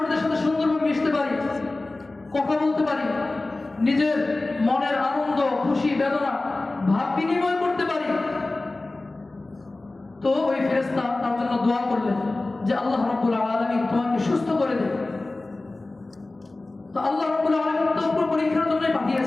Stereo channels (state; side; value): quieter; right; 3.1 dB